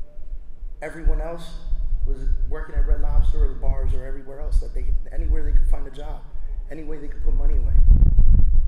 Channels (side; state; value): both; identical; correlation 1.00